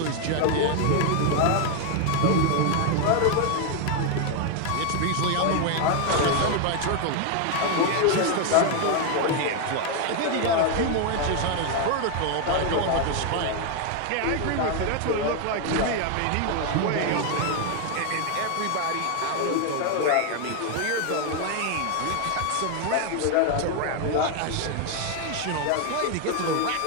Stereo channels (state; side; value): different; both; correlation 0.01